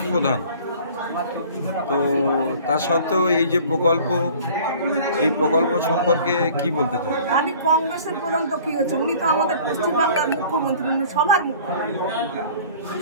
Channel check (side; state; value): both; inverted; correlation -0.48